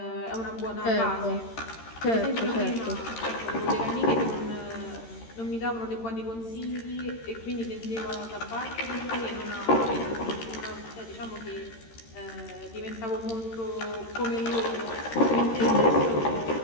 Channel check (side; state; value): right; late; 13 ms